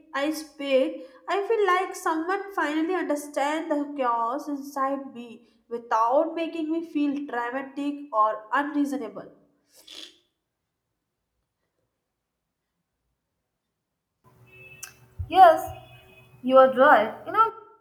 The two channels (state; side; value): identical; both; correlation 1.00